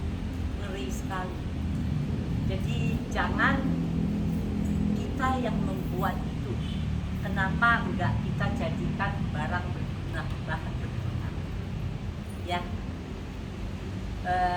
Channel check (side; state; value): both; identical; correlation 1.00